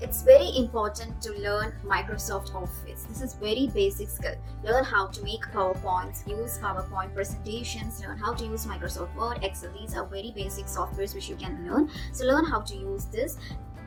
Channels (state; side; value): identical; both; correlation 1.00